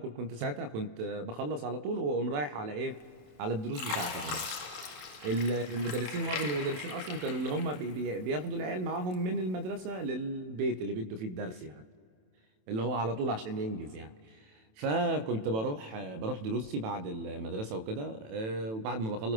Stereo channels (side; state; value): left; late; 27 ms